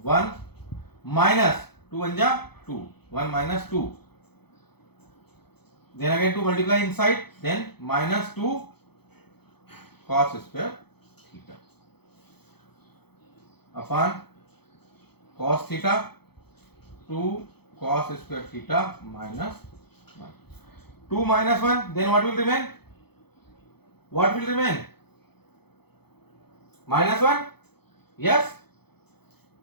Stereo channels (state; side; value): late; right; 0.97 ms